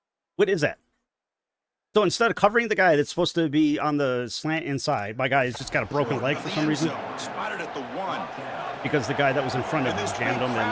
What is that? So instead of covering the guy that's supposed to be on the slant inside, my guy has just got a broken leg for some reason. Spotted at the 1. Because the guy that was in front of him jammed him.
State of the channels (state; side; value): identical; both; correlation 1.00